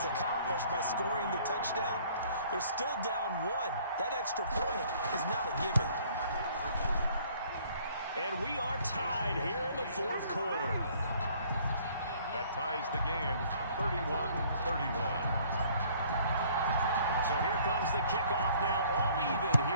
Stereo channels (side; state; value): both; inverted; correlation -0.58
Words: accomplished by scoring the touchdown, they're still down 1. That extra point is not a given. And we are tied here in the 4th quarter. That ties the game, 31-31. So here comes the kickoff now, all even